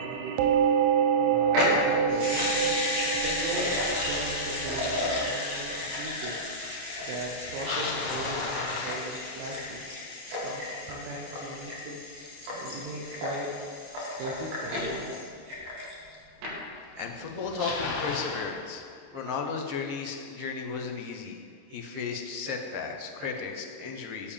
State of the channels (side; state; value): left; late; 28 ms